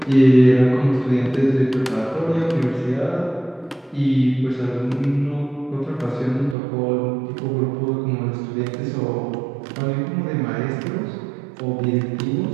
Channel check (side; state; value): left; drops out; at 6.6 s